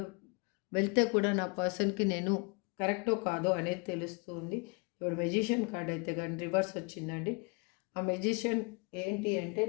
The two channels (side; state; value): right; quieter; 30.9 dB